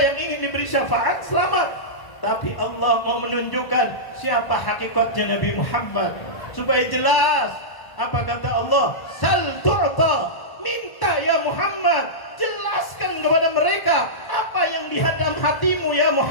ingin diberi syafaat, selamat. Tapi Allah mau menunjukkan siapa hakikatnya Nabi Muhammad. Supaya jelas, apa kata Allah? Sal tu'ta. Minta ya Muhammad, jelaskan kepada mereka apa yang di dalam hatimu ya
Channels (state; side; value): late; right; 1.1 ms